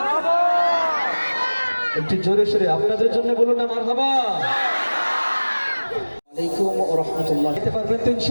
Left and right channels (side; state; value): both; inverted; correlation -1.00